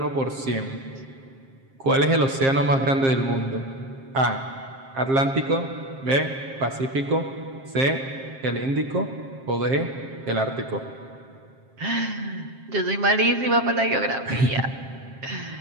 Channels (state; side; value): late; left; 7.5 ms